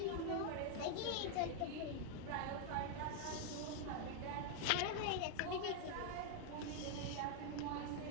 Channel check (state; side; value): different; both; correlation 0.00